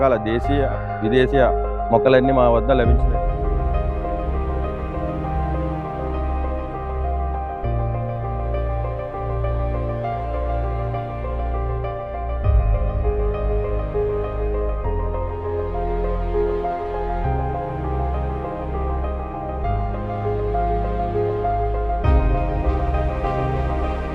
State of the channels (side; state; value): both; identical; correlation 1.00